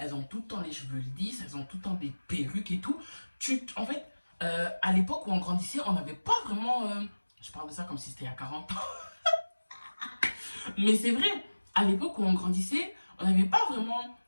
ont tout le temps les cheveux lisses, elles ont tout le temps des perruques et tout. En fait, à l'époque où on grandissait, on n'avait pas vraiment... je parle de ça comme si c'était il y a 40 ans. Mais c'est vrai, à l'époque où on grandissait, on n'avait pas vraiment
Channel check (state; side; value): inverted; both; correlation -1.00